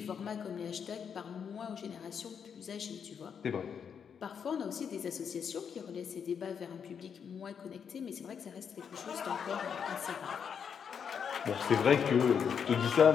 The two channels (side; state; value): right; quieter; 7.2 dB